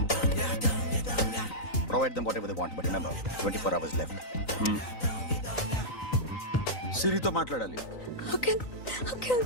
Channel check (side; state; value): right; late; 3.9 ms